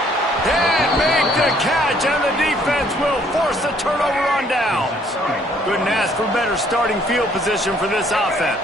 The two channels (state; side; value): normal; both; correlation 0.63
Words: And make the catch, and the defense will force a turnover on downs. Couldn't ask for better starting field position for this